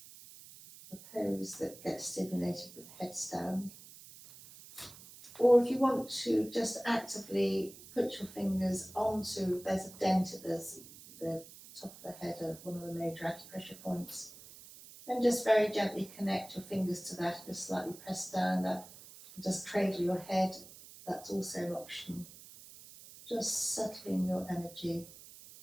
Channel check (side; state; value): right; noise; hiss, 18 dB below the sound